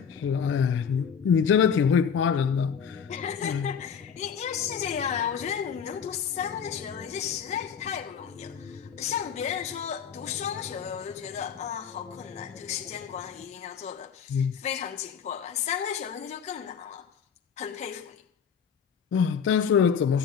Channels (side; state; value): right; quieter; 7.1 dB